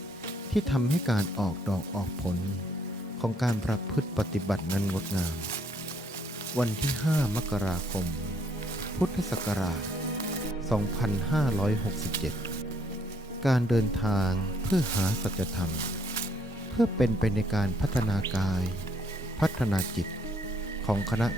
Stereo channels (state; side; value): normal; both; correlation 0.68